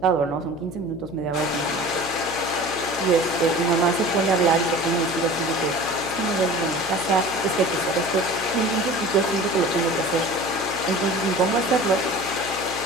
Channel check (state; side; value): noise; left; hum, 15 dB below the sound